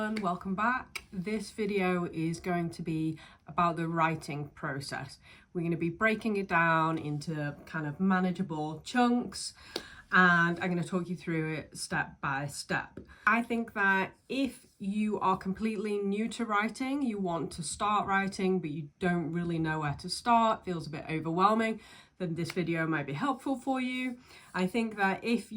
welcome back. This video is going to be about the writing process. We're going to be breaking it down into kind of manageable chunks and I'm going to talk you through it step by step. I think that if you are completely new to writing, you want to start writing but you don't really know where to start, feels a bit overwhelming, then this video might be helpful for you. I think that if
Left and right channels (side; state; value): both; identical; correlation 1.00